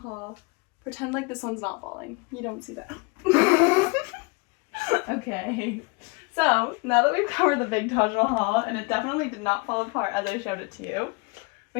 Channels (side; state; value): right; quieter; 29.5 dB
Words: Pretend like this one's not falling. You don't see that. Okay. So now that we've covered the big Taj Mahal, and it definitely did not fall apart as I showed it to you,